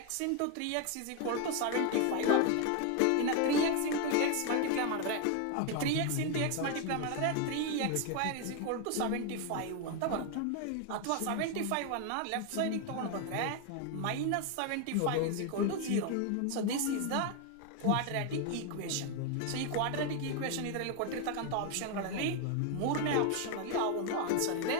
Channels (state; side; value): different; both; correlation 0.01